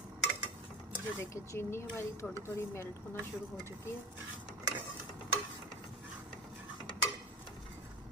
ये देखिए चीनी हमारी थोड़ी थोड़ी मेल्ट होना शुरू हो चुकी है।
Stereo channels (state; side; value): normal; both; correlation 0.29